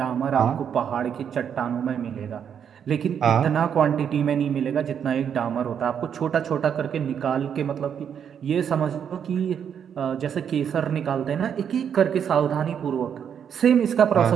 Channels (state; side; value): quieter; left; 8.1 dB